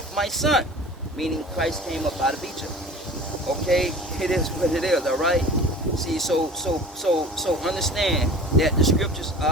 my son. Meaning Christ came up out of Egypt. Okay, it is what it is. All right. See, so understand that the scriptures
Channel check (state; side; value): normal; both; correlation 0.41